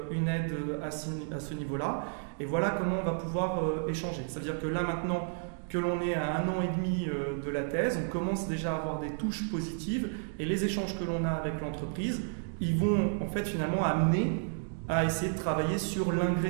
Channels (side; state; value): left; silent; digital silence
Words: une aide à ce niveau-là et voilà comment on va pouvoir échanger. C'est-à-dire que là maintenant que l'on est à 1 an et demi de la thèse, on commence déjà à avoir des touches positives et les échanges que l'on a avec l'entreprise, ils vont en fait finalement amener à essayer de travailler sur